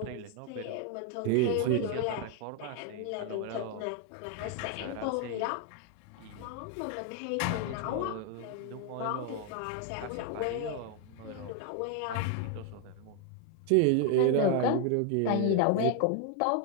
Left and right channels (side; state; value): both; different; correlation 0.01